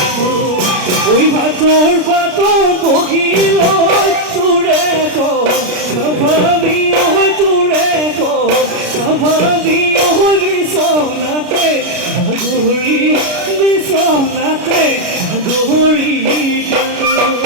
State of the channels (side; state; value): left; late; 33 ms